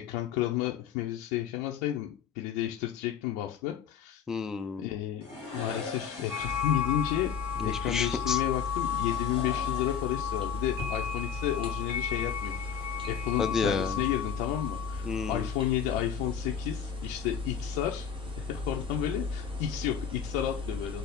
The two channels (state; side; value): quieter; right; 7.9 dB